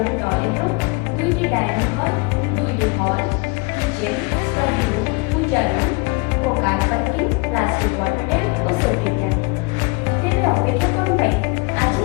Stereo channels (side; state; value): right; quieter; 28.7 dB